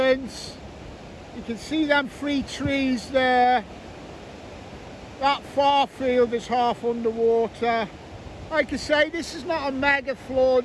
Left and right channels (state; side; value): identical; both; correlation 1.00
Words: you can see them 3 trees there. That far field is half underwater. Like I say, this is not a mega flood,